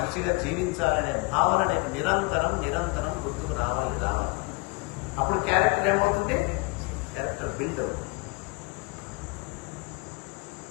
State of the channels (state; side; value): quieter; right; 27.4 dB